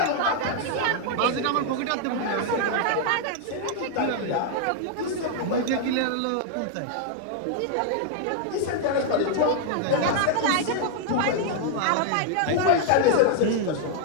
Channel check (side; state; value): both; different; correlation 0.00